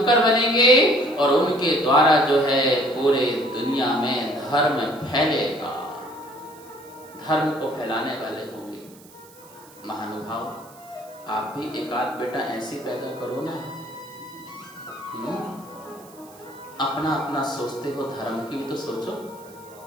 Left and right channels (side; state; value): right; noise; hiss, 23 dB below the sound